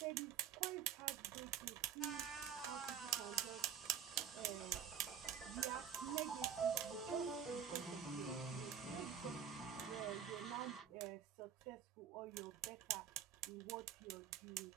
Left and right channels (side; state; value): left; quieter; 8.3 dB